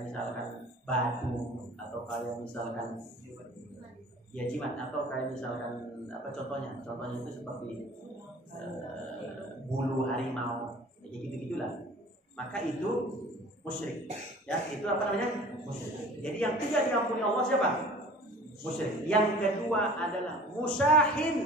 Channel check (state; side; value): normal; both; correlation 0.45